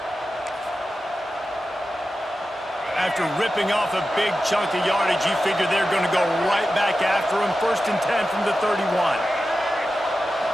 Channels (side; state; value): both; normal; correlation 0.92